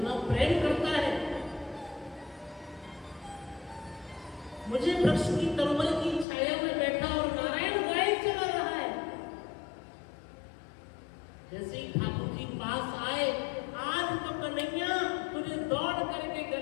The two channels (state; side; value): drops out; right; at 6.2 s